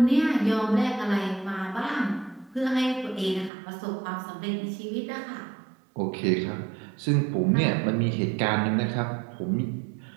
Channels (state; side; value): drops out; left; at 3.5 s